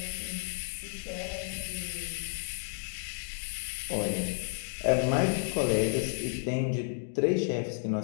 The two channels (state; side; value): silent; right; digital silence